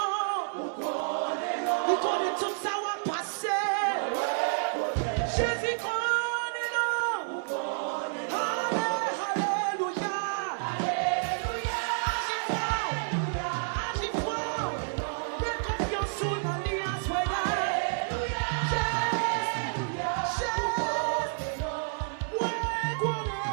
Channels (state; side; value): silent; left; 58 dB below the other